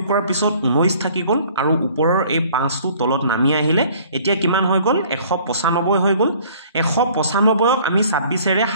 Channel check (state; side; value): inverted; both; correlation -0.54